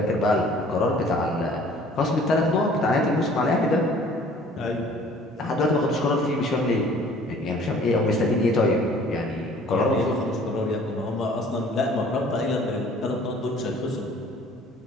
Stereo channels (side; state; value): both; normal; correlation 0.53